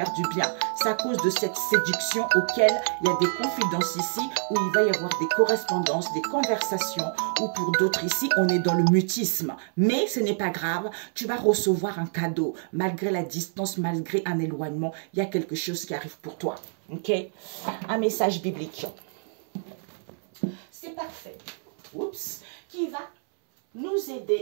du bien. C'est à cause de cette séduction auquel il y a des confidences ici, où il va y avoir des correspondances, des conversations, ou pour d'autres ici, on est dans le mutisme. Mais ce n'est pas grave, tu vas recevoir un cadeau. Malgré la distance, malgré un éloignement, il y a quelque chose qui arrive pour toi. Ok? Un message biblique. C'est parfait. Oups. Qui va nous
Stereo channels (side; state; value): left; silent; 60 dB below the other